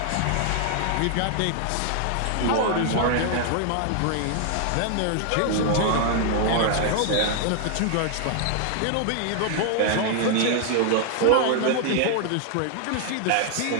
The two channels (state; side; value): different; both; correlation 0.00